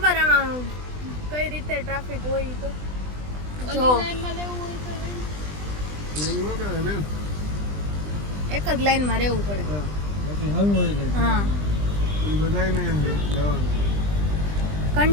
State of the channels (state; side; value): late; left; 20 ms